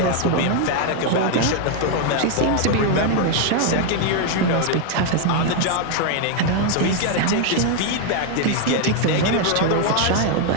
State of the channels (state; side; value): different; both; correlation 0.00